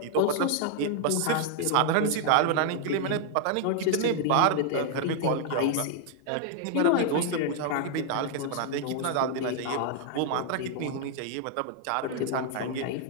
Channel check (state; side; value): different; both; correlation 0.00